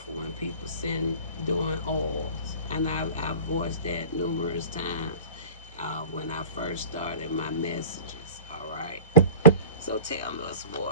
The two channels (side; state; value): both; inverted; correlation -0.39